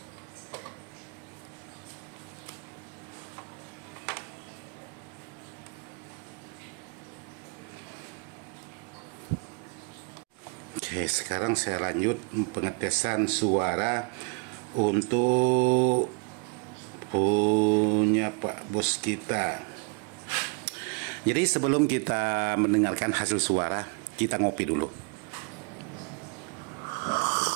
Oke, sekarang saya lanjut pengetesan suara untuk punya Pak Bos kita. Jadi sebelum kita mendengarkan hasil suara, kita ngopi dulu.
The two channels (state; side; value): quieter; left; 33.8 dB